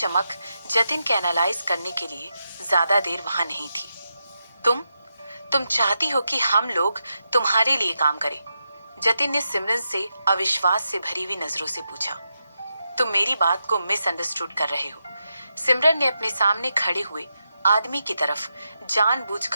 जतिन के एनालाइज करने के लिए ज्यादा देर वहां नहीं थी। तुम चाहती हो कि हम लोग तुम्हारे लिए काम करें? जतिन ने सिमरन से अविश्वास से भरी हुई नजरों से पूछा। तुम मेरी बात को मिसअंडरस्टूड कर रहे हो। सिमरन ने अपने सामने खड़े हुए आदमी की तरफ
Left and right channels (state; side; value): inverted; both; correlation -0.87